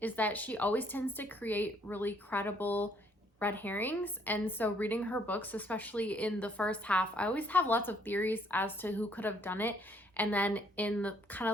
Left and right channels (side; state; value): both; normal; correlation 0.66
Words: is that she always tends to create really credible red herrings, and so reading her books, especially in the first half, I always have lots of theories as to who could have done it, and then in the kind of